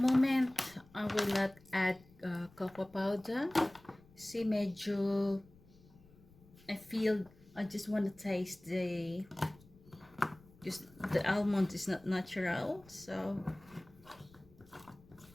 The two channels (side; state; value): left; noise; rumble, 25 dB below the sound